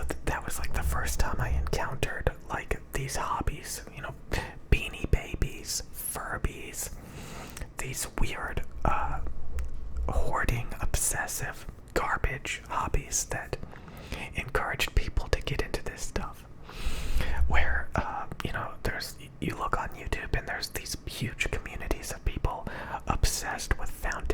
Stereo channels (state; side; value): identical; both; correlation 1.00